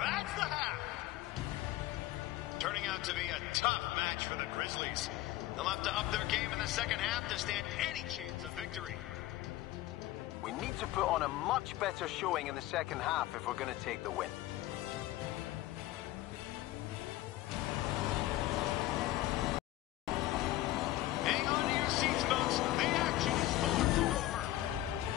the half. Turning out to be a tough match for the Grizzlies. They'll have to up their game in the second half to stand any chance of victory. We need to put on a much better showing in the second half if we're going to take the win. Hang on to your seats, folks. The action is far from over.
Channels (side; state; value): right; quieter; 16.1 dB